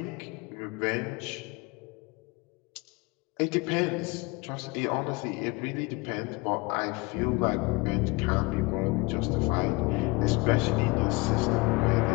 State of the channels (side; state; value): right; quieter; 25.9 dB